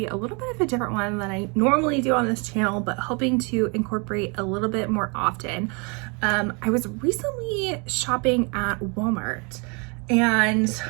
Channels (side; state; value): left; quieter; 32.9 dB